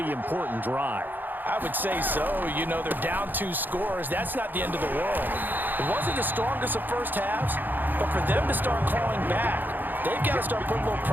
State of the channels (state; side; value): late; left; 0.088 ms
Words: important drive. I would say so. You know, they're down 2 scores. That's not the end of the world. It wasn't the strongest of first halves, but for them to start clawing back, they've got to start putting a little